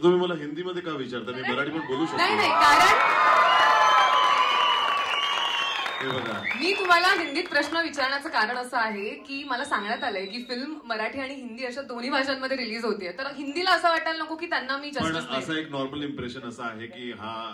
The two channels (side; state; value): both; identical; correlation 1.00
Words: तुम्ही मला हिंदीमध्ये का विचारता? मी मराठी पण बोलू शकतो. नाही, कारण हे बघा, मी तुम्हाला हिंदीत प्रश्न विचारण्याचं कारण असं आहे की मला सांगण्यात आलंय की फिल्म मराठी आणि हिंदी अशा दोन्ही भाषांमध्ये रिलीज होतीये, तर हिंदीला असं वाटायला नको की त्यांना मी जस्टिस पण असं एक नॉर्मल इम्प्रेशन असं आहे की हा